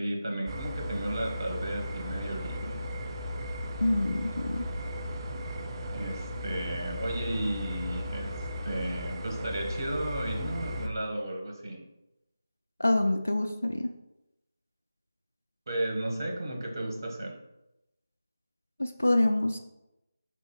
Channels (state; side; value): inverted; both; correlation -0.92